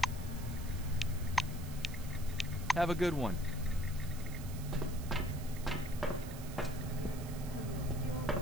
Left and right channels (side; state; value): right; noise; hiss, 15 dB below the sound